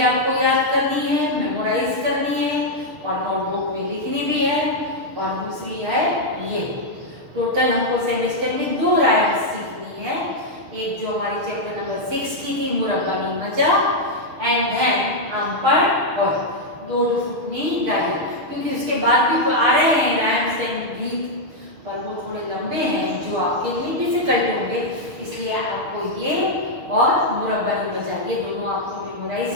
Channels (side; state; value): left; late; 6.4 ms